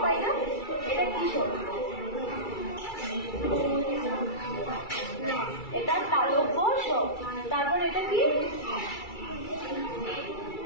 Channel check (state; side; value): late; right; 2.3 ms